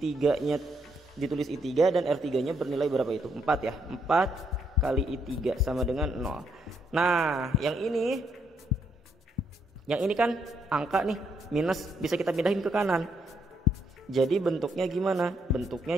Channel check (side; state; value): both; normal; correlation 0.75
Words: ditulis I3 dan R3-nya bernilai berapa itu? 4 ya. 4 kali I3 sama dengan 0. Nah, yang ini kan angka nih, minus, bisa kita pindahin ke kanan. Jadi bentuknya gimana? Bentuknya